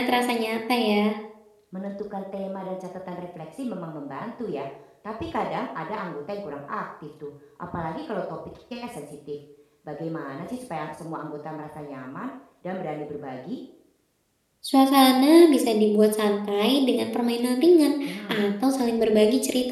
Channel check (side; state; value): both; identical; correlation 1.00